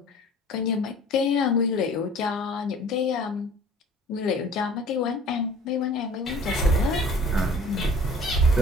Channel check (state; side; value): normal; both; correlation 0.48